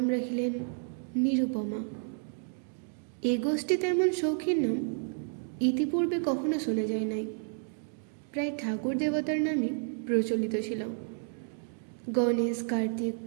রাখিলেন নিরুপমা। এ গোষ্ঠীতে এমন শৌখিন নাম ইতিপূর্বে কখনো শোনা যায় নাই। প্রায় ঠাকুর দেবতার নামই প্রচলিত ছিল। গণেশ, কার্তিক,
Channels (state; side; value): silent; left; 57 dB below the other